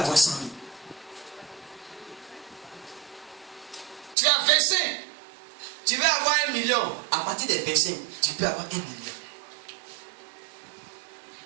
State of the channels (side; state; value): left; drops out; at 4.2 s